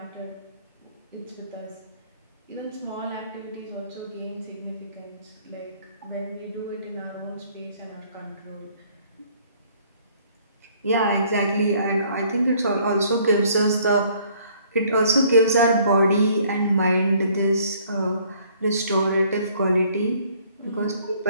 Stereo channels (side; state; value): both; inverted; correlation -0.60